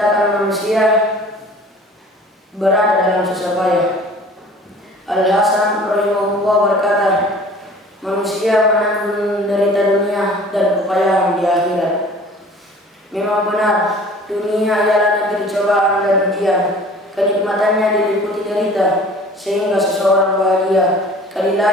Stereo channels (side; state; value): both; normal; correlation 0.47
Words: manusia berada dalam susah payah. Al-Hasan rahimahullah berkata, manusia menanggung derita dunia dan kepayahan di akhirat. Memang benar, dunia ialah negeri cobaan dan ujian. Kenikmatannya diliputi derita, sehingga seseorang bahagia. Kali